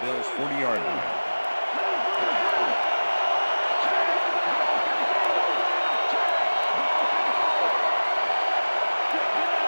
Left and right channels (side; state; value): both; inverted; correlation -1.00